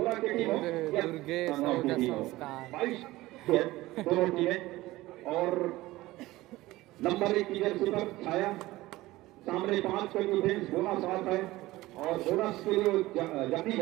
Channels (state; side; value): quieter; left; 18.2 dB